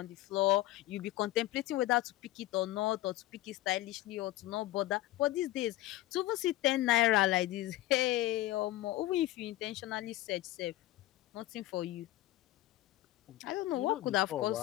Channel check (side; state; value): right; quieter; 16.2 dB